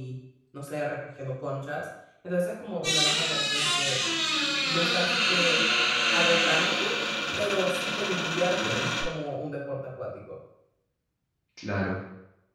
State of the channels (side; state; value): both; identical; correlation 1.00